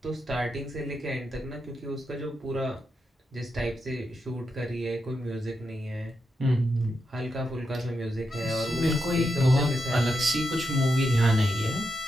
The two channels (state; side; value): normal; both; correlation 0.85